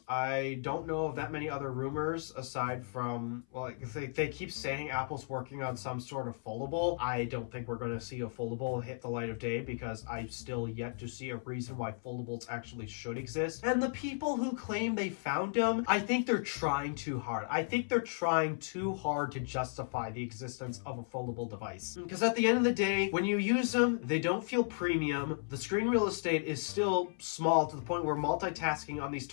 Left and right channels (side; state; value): right; silent; 55 dB below the other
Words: I don't know of that many other rumors aside from, well, they keep saying Apple's working on some sort of foldable. I don't think we're going to see a foldable hit the light of day because I've still yet to see a reason why foldables actually should exist. And the people who claim they found them, I think they're trying too hard. I think they're trying too hard to justify the existence of a foldable device. Because at the end of the day, when you use them, they don't feel premium. The screen real estate estate is still small to the point where multitasking on these